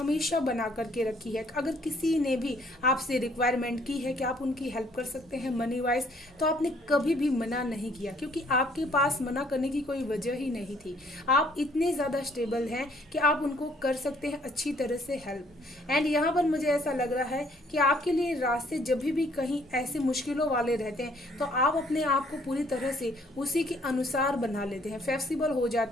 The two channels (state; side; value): normal; both; correlation 0.63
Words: बना करके रखी है। अगर किसी ने भी आपसे रिक्वायरमेंट की है कि आप उनकी हेल्प कर सकते हैं मनी वाइज, तो आपने कभी भी मना नहीं किया, क्योंकि आपके पास मना करने की कोई वजह ही नहीं थी। आप इतने ज़्यादा स्टेबल हैं कि आप उनको कर सकते हैं अच्छी तरह से हेल्प। एंड यहाँ पर मुझे ऐसा लग रहा है कि आपके लिए रास्ते जब भी कहीं ऐसे मुश्किलों वाले रहते हैं तो आप अपने आप को पूरी तरह से उसी के अनुसार बना लेते हैं, फ्लेक्सिबल हो